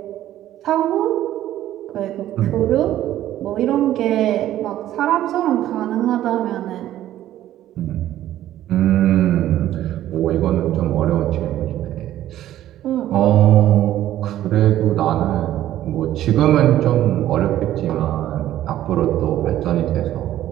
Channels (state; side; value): quieter; left; 13.0 dB